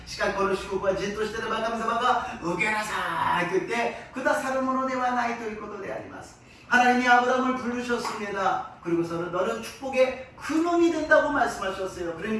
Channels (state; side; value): identical; both; correlation 1.00